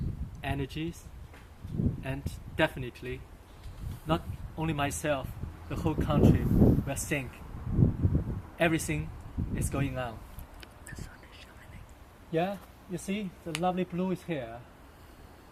energies, and definitely not only myself, the whole country will think everything is going on. The sun is shining. Yeah, you see, the lovely blue is here.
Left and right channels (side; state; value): both; identical; correlation 1.00